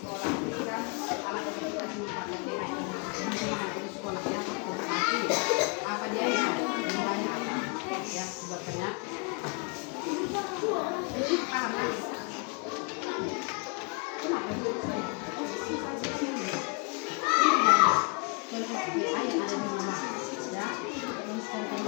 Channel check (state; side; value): quieter; right; 33.8 dB